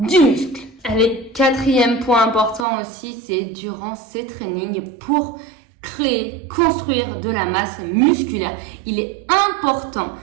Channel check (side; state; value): left; drops out; at 2.7 s